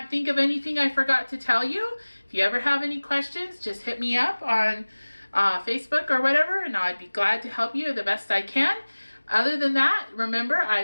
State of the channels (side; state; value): both; inverted; correlation -1.00